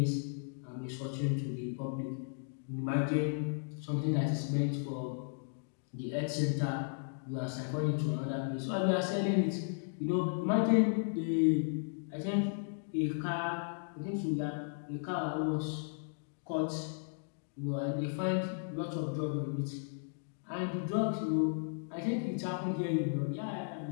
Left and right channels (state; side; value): silent; right; digital silence